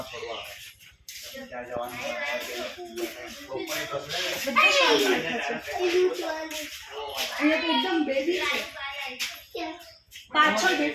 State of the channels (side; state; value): both; identical; correlation 1.00